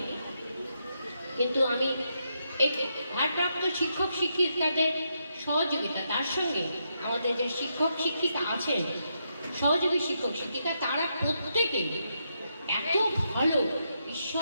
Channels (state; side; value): inverted; both; correlation -0.81